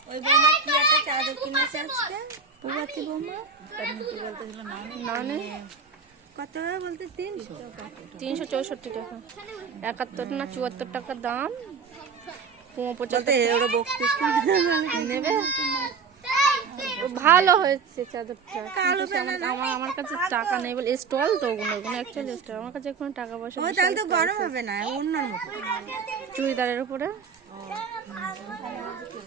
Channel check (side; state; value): left; quieter; 5.4 dB